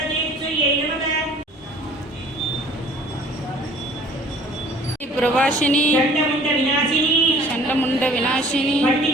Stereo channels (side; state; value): both; normal; correlation 0.51